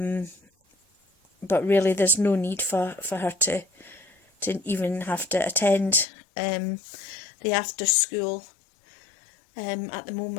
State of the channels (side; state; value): right; drops out; at 6.1 s